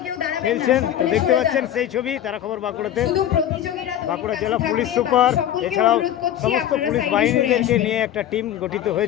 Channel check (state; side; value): quieter; right; 11.2 dB